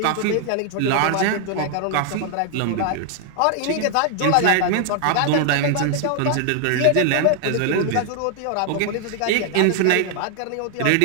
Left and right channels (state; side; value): different; both; correlation 0.00